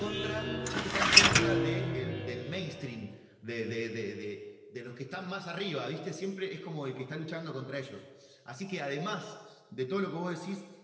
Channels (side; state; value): both; identical; correlation 1.00